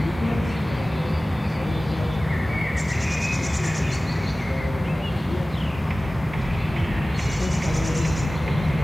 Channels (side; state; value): both; normal; correlation 0.97